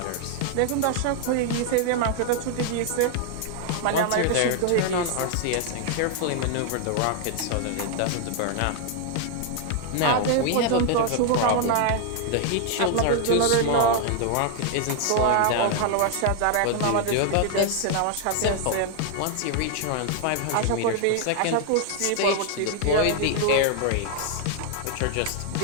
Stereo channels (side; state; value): both; different; correlation 0.00